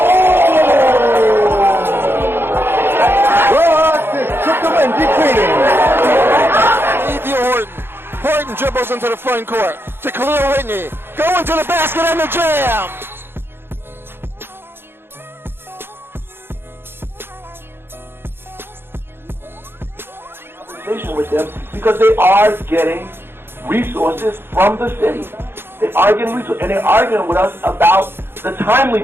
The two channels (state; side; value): late; left; 0.11 ms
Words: Took the win, deep cleaning. Horton. Horton dribbles into the front court to Khalil Whitney. Going to the basket and the jam. With them because they are getting resources from the city. They are getting resources, and they're arguing with us about the